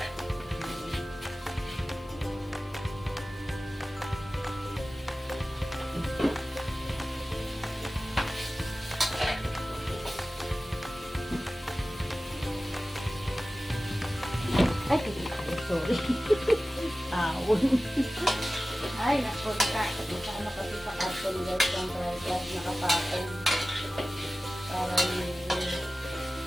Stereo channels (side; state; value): both; normal; correlation 0.96